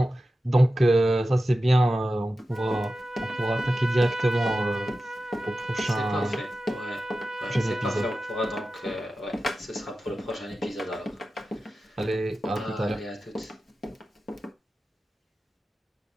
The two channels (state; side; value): normal; both; correlation 0.93